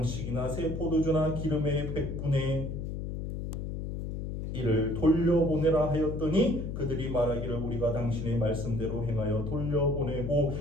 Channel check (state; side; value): noise; left; hum, 5 dB below the sound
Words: 새 포도주나 기름의 100분의 1을 돌려보내라 하였더니 그들이 말하기를 우리가 당신의 말씀대로 행하여 돌려보내고